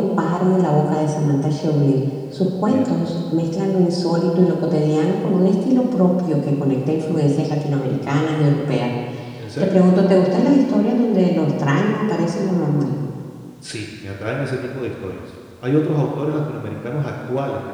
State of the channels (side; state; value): both; identical; correlation 1.00